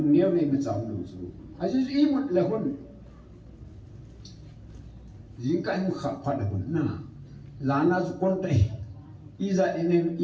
nhiều này mà cháu lúc chú ai chú ý một là hôn riêng cái một khắp phát là hôn na là na chú con tay iza enen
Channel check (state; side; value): identical; both; correlation 1.00